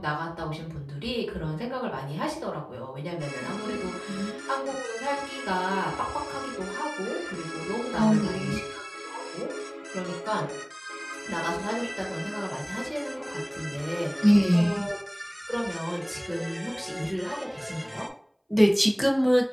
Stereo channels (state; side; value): identical; both; correlation 1.00